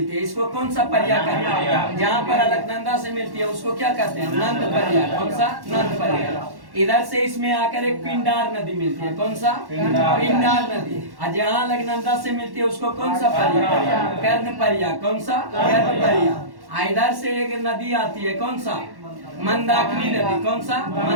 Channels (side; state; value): left; late; 1.1 ms